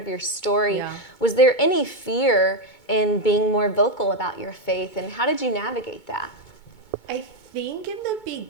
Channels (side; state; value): right; late; 2.2 ms